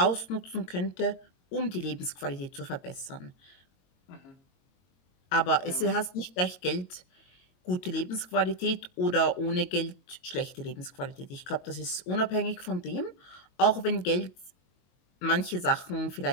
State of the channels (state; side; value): late; right; 22 ms